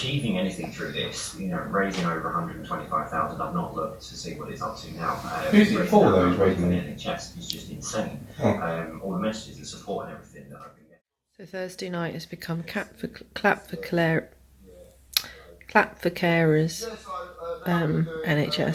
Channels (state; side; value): identical; both; correlation 1.00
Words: anything through this, raising over 125,000, I've not looked to see what it's up to now. Who's it for though, he's raising the it? NHS is just insane. Oh. All the messages, the support and everything that I've been getting. So Thursday night has become clap for carers